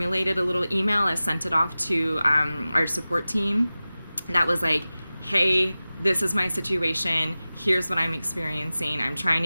a little email. I sent it off to our support team that was like, hey, this is my situation, here's what I'm experiencing, I'm trying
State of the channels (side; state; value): both; inverted; correlation -0.97